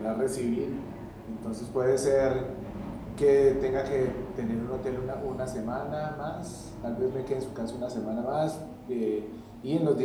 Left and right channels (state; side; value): identical; both; correlation 1.00